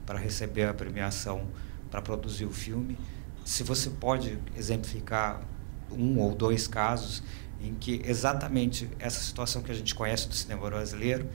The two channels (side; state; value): left; silent; digital silence